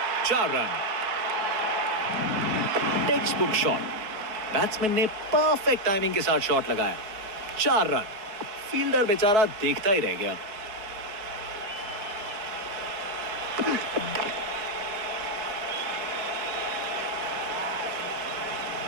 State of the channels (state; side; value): late; left; 4.7 ms